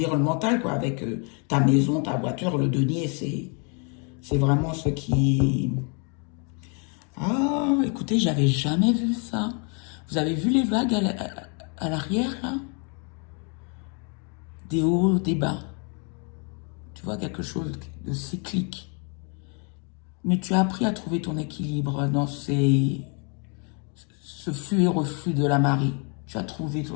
quoi, avec ta maison, ta voiture, le denier, c'est vraiment ce qui... Ah, écoutez, j'avais jamais vu ça. Vous avez vu les vagues à l'arrière, là? Des hauts, des bas. Tu vois, quelque chose de cyclique. Mais tu as appris à trouver ton équilibre dans ce flux et reflux de la marée. Tu as trouvé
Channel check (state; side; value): quieter; right; 36.9 dB